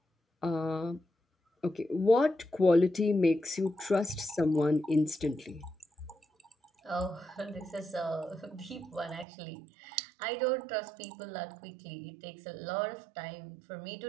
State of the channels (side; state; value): left; drops out; at 9.2 s